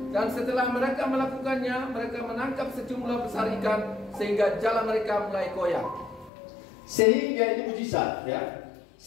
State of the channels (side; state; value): right; drops out; at 6.3 s